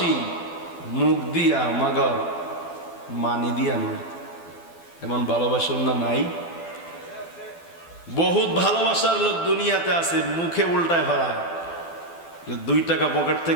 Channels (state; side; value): late; right; 12 ms